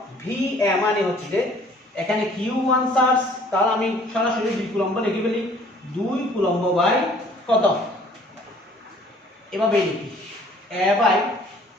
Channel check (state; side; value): normal; both; correlation 0.55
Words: ভি এ মানে হচ্ছে যে এখানে Q1 চার্জ, তাহলে আমি সরাসরি 2 কুলম্ব লিখে ফেলি, 2 কুলম্ব বাই কত, এভাবে লিখি A by